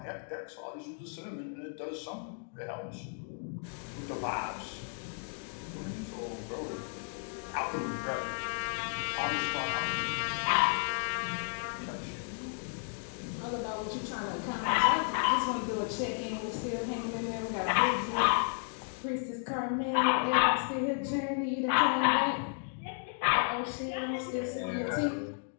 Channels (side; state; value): right; silent; 55 dB below the other